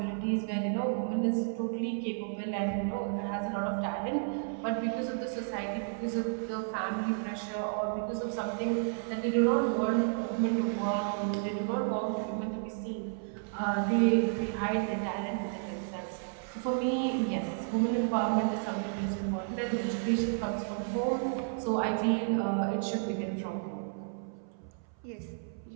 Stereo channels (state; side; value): silent; left; 56 dB below the other